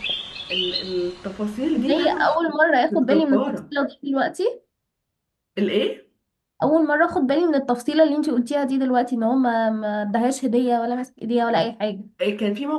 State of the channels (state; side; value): identical; both; correlation 1.00